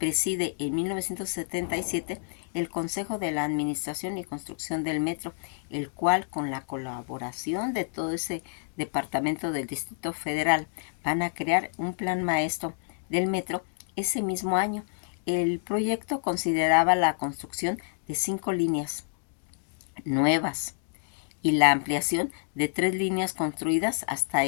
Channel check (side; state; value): right; silent; digital silence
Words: en 1977 el Consejo de la Administración y Construcción del Metro, el cual, con la colaboración de todo ese departamento del Distrito Federal, van a crear un plan maestro del metro ese mismo año. El proyecto consideraba la construcción de 5 líneas nuevas y la ampliación de 3 líneas construidas hasta